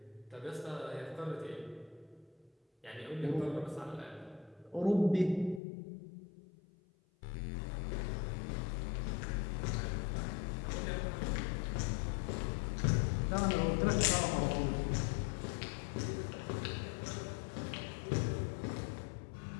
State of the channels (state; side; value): drops out; right; at 5.6 s